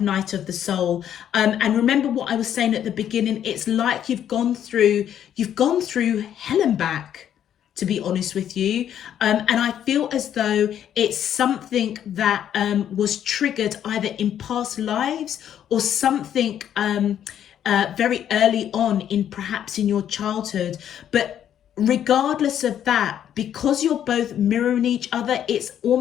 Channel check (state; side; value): quieter; right; 10.0 dB